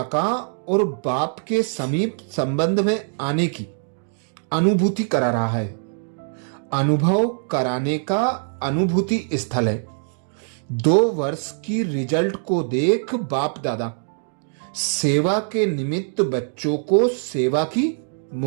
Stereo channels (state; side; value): silent; left; digital silence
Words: का और बाप के समीप संबंध में आने की अनुभूति करा रहा है, अनुभव कराने का अनुभूति स्थल है। 2 वर्ष की रिजल्ट को देख बाप दादा सेवा के निमित्त बच्चों को सेवा की